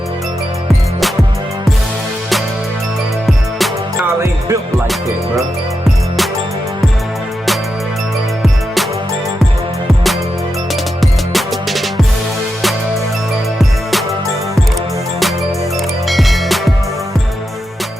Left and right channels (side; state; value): both; normal; correlation 0.87